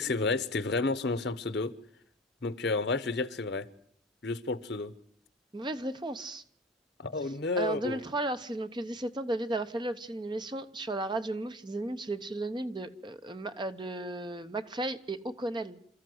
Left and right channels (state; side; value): normal; both; correlation 0.40